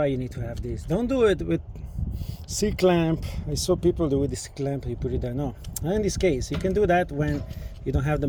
you need to have this. Don't do it with C-clamp. I saw people do with this clamp, you put it there. No, in this case you can do that when you don't have the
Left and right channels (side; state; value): both; identical; correlation 1.00